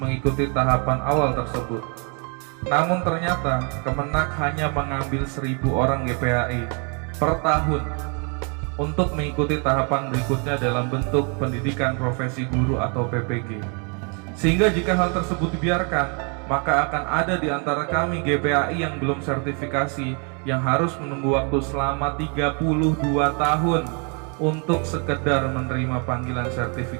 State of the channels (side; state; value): left; quieter; 36.8 dB